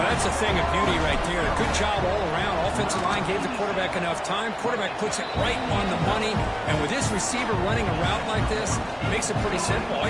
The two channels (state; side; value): identical; both; correlation 1.00